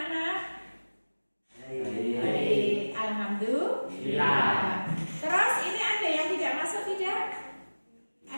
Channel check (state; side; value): inverted; both; correlation -1.00